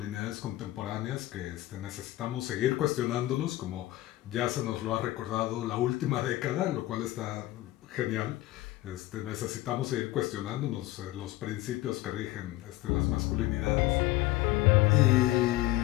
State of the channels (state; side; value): quieter; right; 17.0 dB